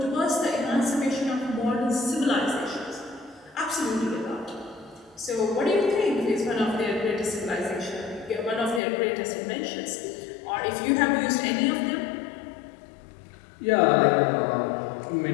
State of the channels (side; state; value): right; drops out; at 8.8 s